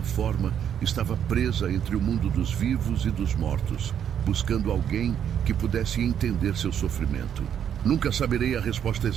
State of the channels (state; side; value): quieter; left; 9.0 dB